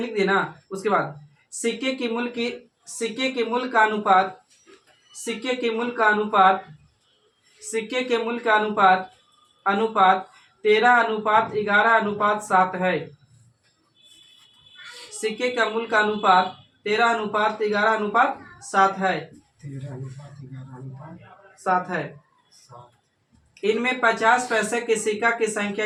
दिए ना। उसके बाद सिक्के की मूल का अनुपात, सिक्के के मूल का अनुपात 13:11:7 है। सिक्के का मूल का अनुपात 13:11:7 है, 7 है। इनमें 50 पैसे के सिक्का की संख्या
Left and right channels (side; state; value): both; identical; correlation 1.00